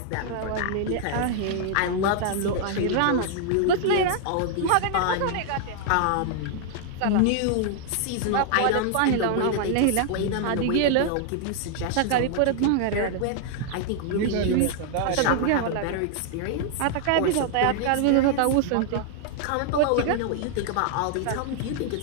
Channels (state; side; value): different; both; correlation 0.00